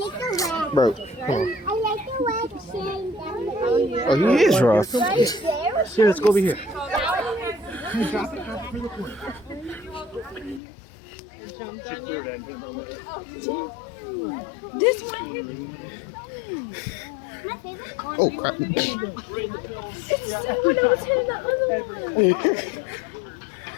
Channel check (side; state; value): right; drops out; at 10.6 s